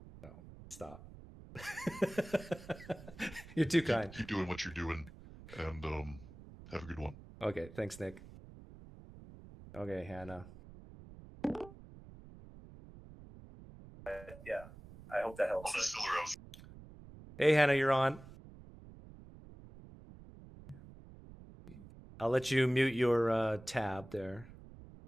Stop. You're too kind. Keep doing what you're doing, and have a good one. Okay, thanks, Nick. Okay, Hannah. Yeah, I hope that helps. Hey, Hannah, you're on. I'll let you mute your tab there.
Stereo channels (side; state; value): right; noise; rumble, 17 dB below the sound